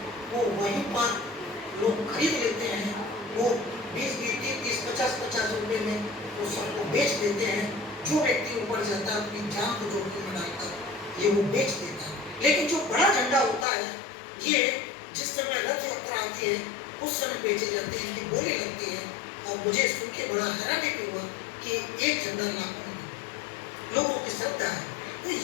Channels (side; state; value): right; drops out; at 13.7 s